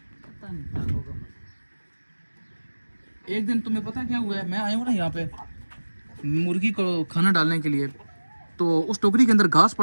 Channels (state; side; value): inverted; both; correlation -1.00